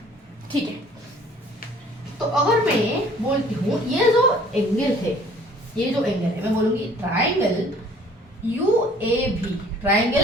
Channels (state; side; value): normal; both; correlation 0.54